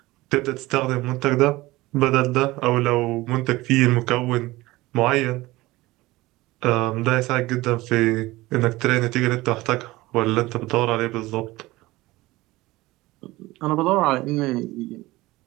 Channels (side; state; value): left; quieter; 19.4 dB